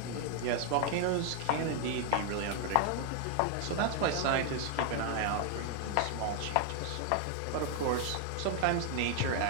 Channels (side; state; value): both; different; correlation 0.00